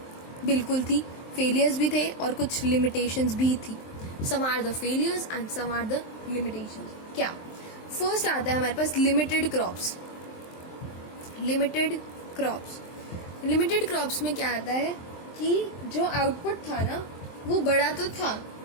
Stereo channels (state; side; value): late; right; 23 ms